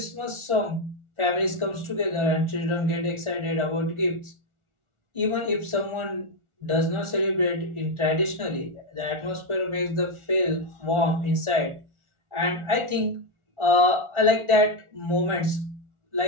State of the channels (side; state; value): left; late; 1.5 ms